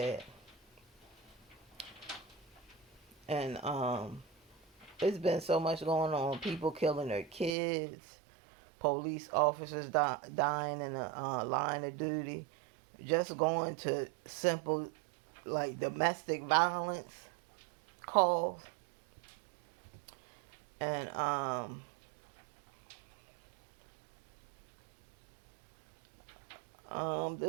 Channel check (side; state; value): left; drops out; at 7.5 s